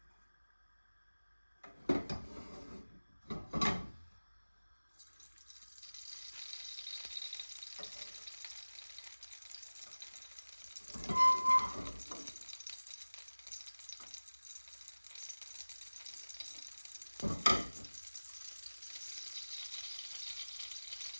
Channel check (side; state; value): both; inverted; correlation -1.00